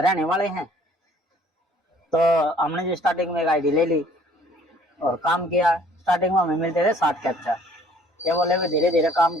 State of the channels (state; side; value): normal; both; correlation 0.57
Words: वाले हैं। तो हमने जो स्टार्टिंग में एक आईडी ले ली और काम किया। स्टार्टिंग में हमें मिलते थे 60 कैप्चा। ये बोले भी धीरे धीरे काम